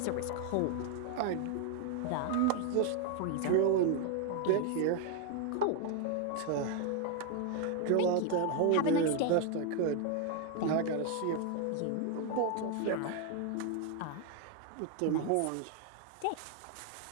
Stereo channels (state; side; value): different; both; correlation 0.01